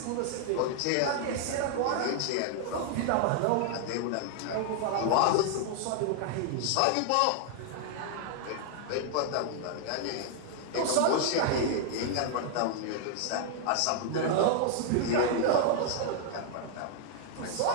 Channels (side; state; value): both; different; correlation 0.00